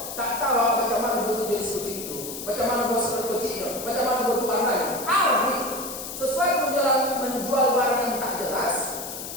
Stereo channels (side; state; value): left; noise; hiss, 8 dB below the sound